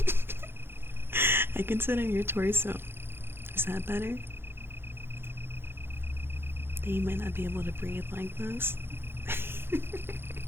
I can sit on your torso. Is that better? That you might not be able to breathe like this.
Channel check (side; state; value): left; late; 0.11 ms